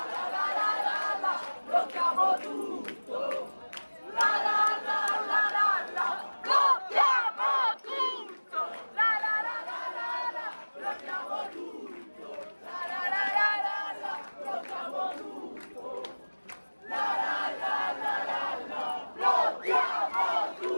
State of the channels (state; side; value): inverted; both; correlation -1.00